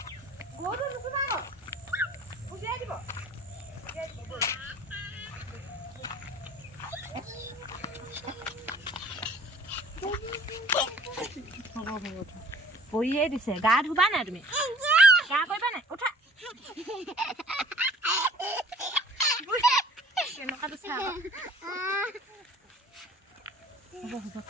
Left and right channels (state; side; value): normal; both; correlation 0.51